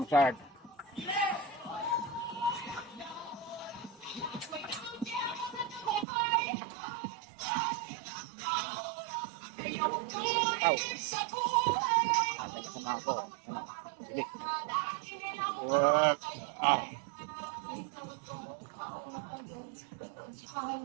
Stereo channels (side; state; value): left; drops out; at 6.1 s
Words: Aw. Atay ka sa mga ko. Ano? Sige. Work. Ah.